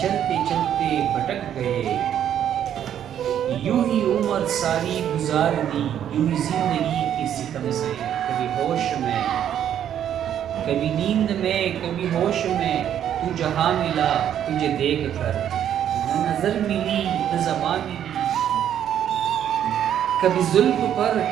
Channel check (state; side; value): quieter; left; 10.0 dB